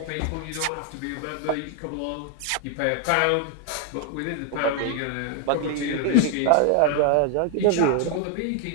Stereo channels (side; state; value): both; different; correlation 0.00